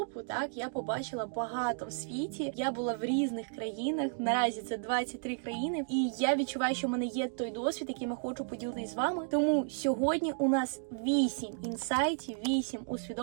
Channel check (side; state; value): left; silent; digital silence